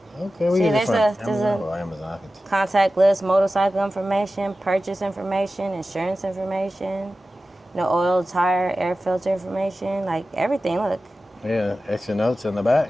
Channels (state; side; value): normal; both; correlation 0.94